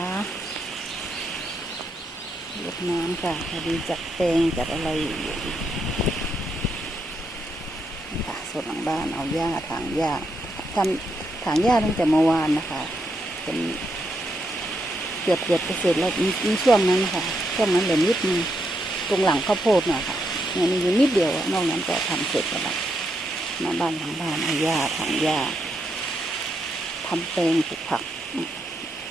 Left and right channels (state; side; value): normal; both; correlation 0.80